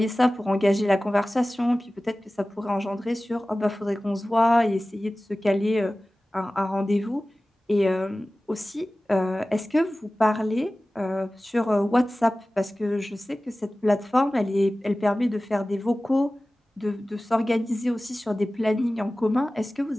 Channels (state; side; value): normal; both; correlation 0.97